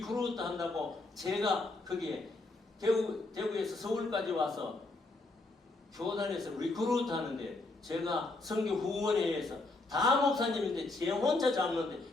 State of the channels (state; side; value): quieter; right; 3.1 dB